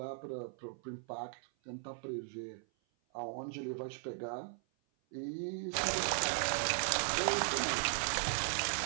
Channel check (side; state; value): left; silent; 53 dB below the other